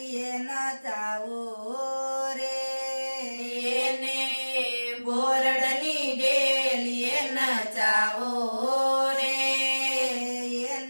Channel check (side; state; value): both; inverted; correlation -1.00